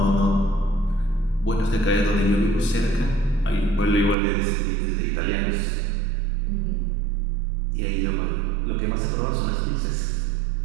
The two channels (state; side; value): drops out; left; at 4.2 s